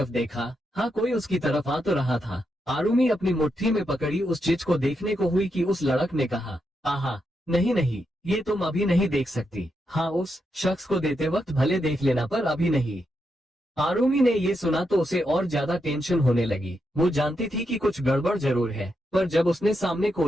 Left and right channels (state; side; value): normal; both; correlation 0.83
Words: देखा। हाँ, कोई उसकी तरफ आ तो रहा था। आरुमी अपनी मुट्ठी में पकड़ी उस चीज को देखने को हुई कि उस लड़क ने कहा, आहा, नहीं, ये तुम अभी नहीं देख सकती। हाँ, उस शख्स को देते वक्त भले देख लेना, पर अभी नहीं। आरुमी ने ये सुना तो उसे और ज्यादा टेंशन होने लगी। वो जानती थी कि कुछ गड़बड़ जरूर है, पर जब उसने सामने